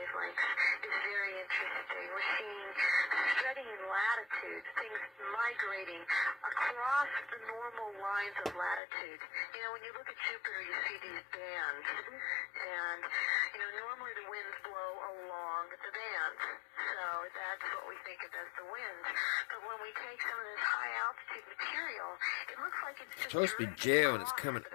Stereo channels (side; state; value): right; drops out; at 8.8 s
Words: is very interesting. We're seeing spreading in latitudes, things migrating across the normal lines of latitude. You know, when you look at Jupiter, you see these bands, and normally the winds blow along the bands, so that's what we think of as the winds. But when we take some of this high altitude material, it looks like it's just supposed to be gel and it's coming